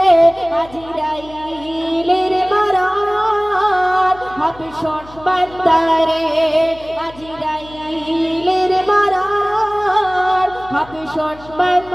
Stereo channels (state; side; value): noise; left; hum, 21 dB below the sound